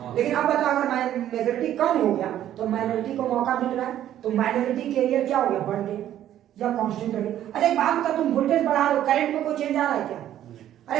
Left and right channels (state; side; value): quieter; left; 11.7 dB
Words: लेकिन अब बताओ अगर मेजॉरिटी कम हो गया तो माइनॉरिटी को मौका मिल रहा है, तो माइनॉरिटी कैरियर क्या हो गया? बढ़ गया या कांस्टेंट रह गया? अच्छा एक बात बता, तुम वोल्टेज बढ़ा रहे हो, करंट में कोई चेंज आ रहा है क्या?